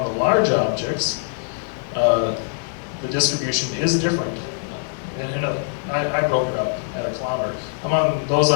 the large objects, the distribution is different. I broke it up at a kilometer. Among those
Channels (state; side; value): silent; right; digital silence